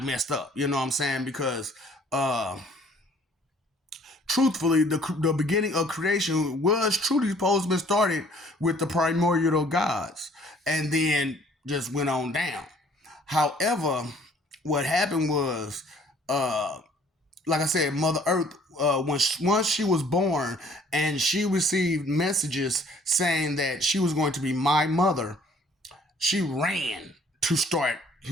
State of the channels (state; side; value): normal; both; correlation 0.57